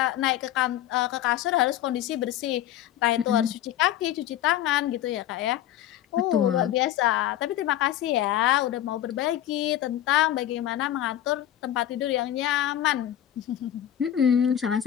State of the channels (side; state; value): right; quieter; 11.9 dB